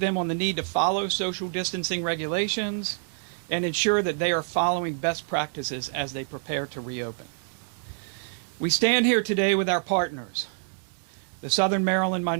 on the need to follow social distancing regulations and ensure that they are following best practices as they prepare to reopen. We stand here today with our partners, the Southern Maryland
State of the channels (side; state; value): left; silent; digital silence